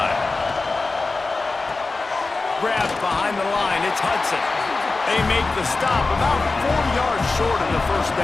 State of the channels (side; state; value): right; quieter; 3.6 dB